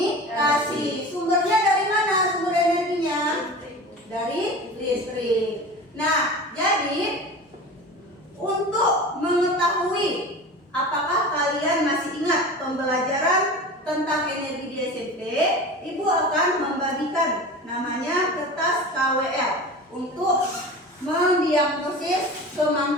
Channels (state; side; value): normal; both; correlation 0.34